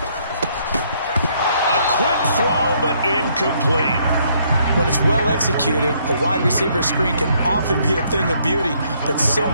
A quick throw, but incomplete. When it's well executed, a wide receiver screen can often be a thing of beauty, but so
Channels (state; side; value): inverted; both; correlation -0.69